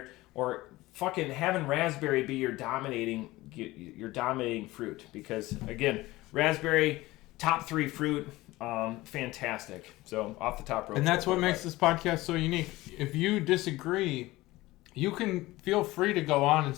or fucking having raspberry be your dominating fruit. Because again, raspberry, top 3 fruit. Fantastic. So off the top rope. And that's what makes this podcast so unique. If you disagree, you can feel free to go on and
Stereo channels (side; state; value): right; quieter; 19.0 dB